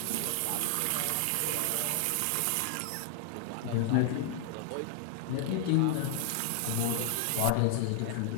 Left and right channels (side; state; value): both; different; correlation 0.00